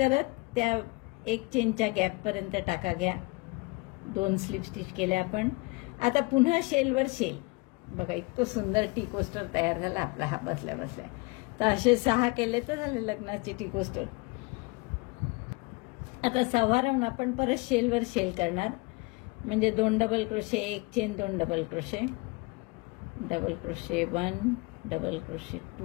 त्या एक चेनच्या गॅपपर्यंत टाका घ्या. 2 स्लिप स्टिच केल्या आपण. आता पुन्हा शेलवर शेल. बघा, इतकं सुंदर टी कोस्टर तयार झाला आपला हा बसल्या बसल्या. तर असे 6 केले तर झाले लग्नाचे टी कोस्टर. आता 6वा राऊंड आपण परत शेलवर शेल करणार. म्हणजे 2 डबल क्रोशे, एक chain, 2 double crochet, double crochet 1, double crochet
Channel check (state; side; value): quieter; right; 27.1 dB